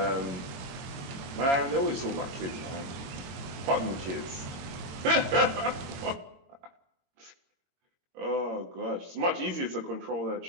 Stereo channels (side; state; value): left; late; 22 ms